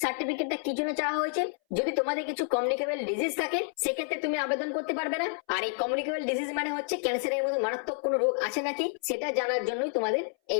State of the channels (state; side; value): silent; right; 58 dB below the other